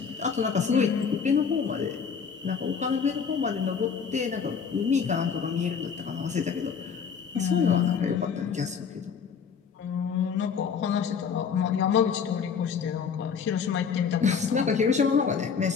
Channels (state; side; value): quieter; right; 6.5 dB